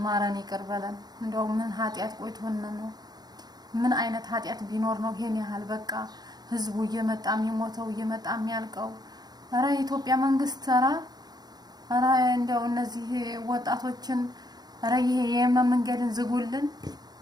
ማረን፣ ይቅር በለን። እንደው ምን ኃጢያት ቆይቶን ነው? ምን አይነት ኃጢያት ቢኖር ነው ይሄን ያህል በቃ ህዝቡ እየመጣ የሚሞተው እየመጣ የሚያልቀው? ኧረ የኢትዮጵያ መንግስት ኧረ እንደው እነዚህ ወጣቶችን ኧረ ይሄ የየመን መንገድን ዝጉልን።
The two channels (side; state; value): left; late; 0.19 ms